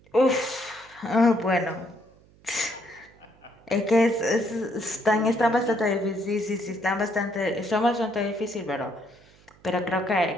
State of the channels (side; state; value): right; noise; hum, 28 dB below the sound